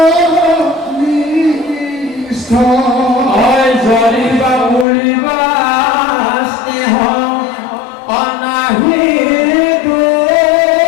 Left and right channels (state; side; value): drops out; right; at 4.9 s